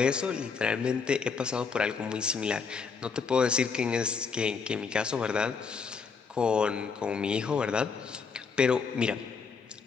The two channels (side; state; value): right; quieter; 5.5 dB